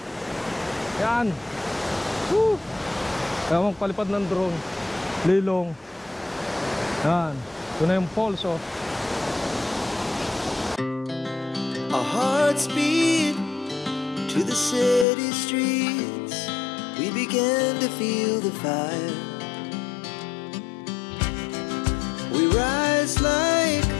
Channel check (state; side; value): drops out; right; at 15.1 s